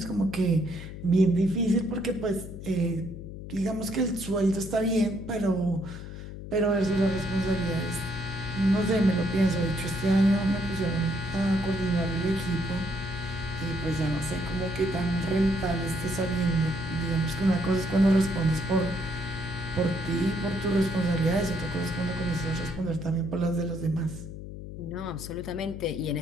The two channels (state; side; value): noise; left; hum, 10 dB below the sound